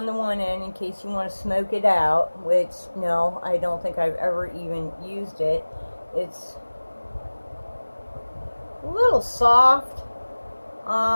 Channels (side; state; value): both; inverted; correlation -1.00